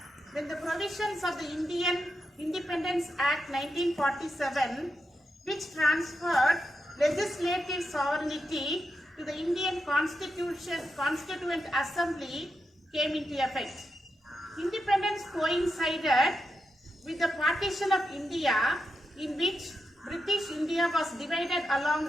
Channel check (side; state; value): both; normal; correlation 0.86